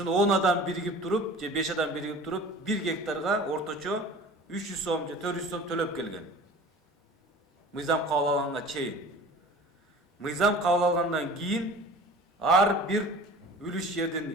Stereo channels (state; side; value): normal; both; correlation 0.42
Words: 10 адам биригип туруп же 5 адам биригип туруп 1 гектарга орточо 300 сом же 400 сом төлөп келген. Мыйзам кабыл алганга чейин. Мыйзам кабыл алгандан кийин ар бир үлүш